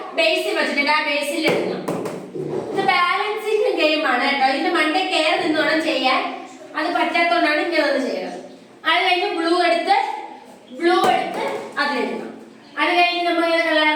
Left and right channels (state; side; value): identical; both; correlation 1.00